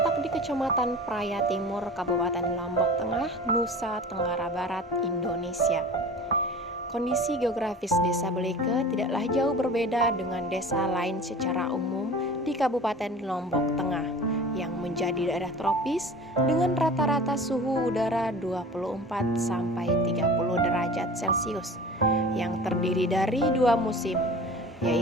di Kecamatan Praya Timur, Kabupaten Lombok Tengah, Nusa Tenggara Barat, Indonesia. Kondisi geografis Desa Beleke tidaklah jauh berbeda dengan desa lain secara umum di Kabupaten Lombok Tengah yang menjadi daerah tropis dengan rata-rata suhu udara 24 sampai 30 derajat Celcius yang terdiri dari dua musim,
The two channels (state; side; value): normal; both; correlation 0.39